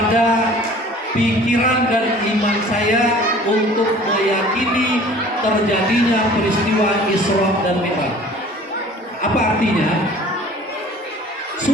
pikiran dan iman saya untuk meyakini terjadinya peristiwa Isra dan Mi'raj. Apa artinya?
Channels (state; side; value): normal; both; correlation 0.48